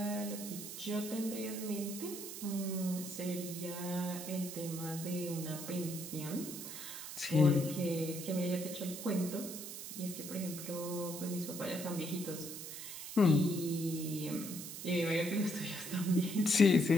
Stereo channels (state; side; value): noise; right; hiss, 9 dB below the sound